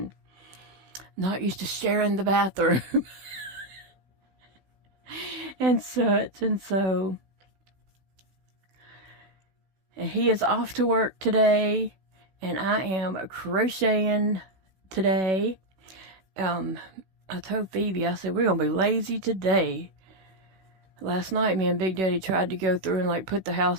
not used to sharing the bathroom and such. And so, and he is off to work today, and I am crocheting today. I told Phoebe, I said, we're going to be lazy today. Last night, me and Big Daddy tried to go through and like put the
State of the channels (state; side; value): late; left; 16 ms